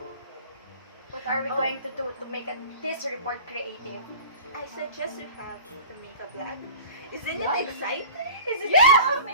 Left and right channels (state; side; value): inverted; both; correlation -0.41